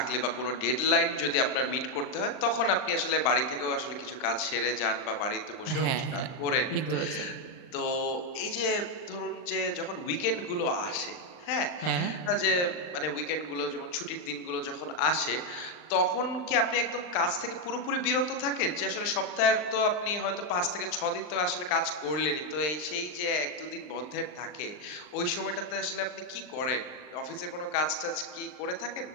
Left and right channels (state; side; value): late; right; 39 ms